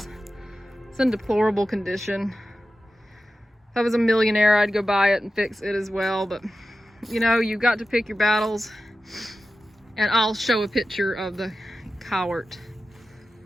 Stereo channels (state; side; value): normal; both; correlation 0.93